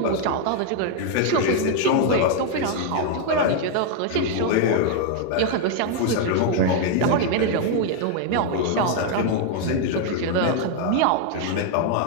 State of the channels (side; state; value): both; different; correlation 0.00